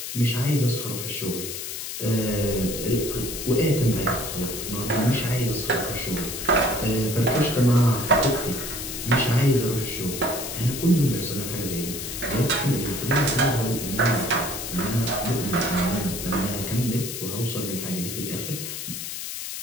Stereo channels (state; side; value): noise; left; hiss, 6 dB below the sound